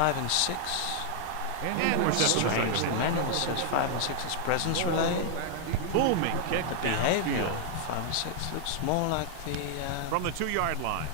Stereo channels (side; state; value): both; different; correlation 0.00